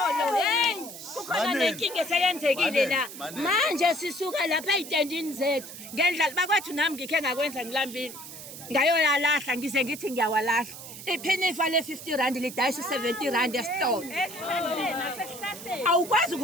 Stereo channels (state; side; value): noise; right; hiss, 13 dB below the sound